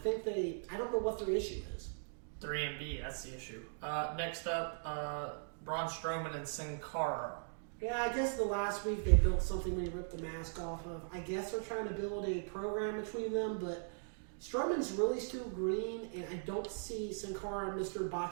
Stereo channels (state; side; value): silent; left; digital silence